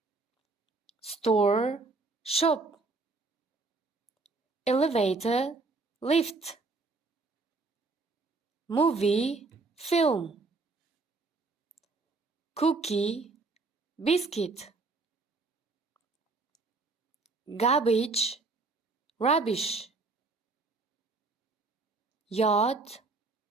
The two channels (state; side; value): quieter; left; 3.7 dB